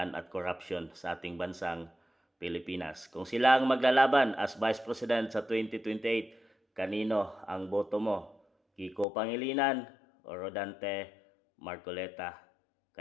at corruption sa ating bansang Pilipinas. Kung sila ang maglalaban as Vice President sa 2028, kanino ang boto mo? Kiko Pangilinan o Rodante Marcoleta?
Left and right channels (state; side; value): drops out; right; at 9.1 s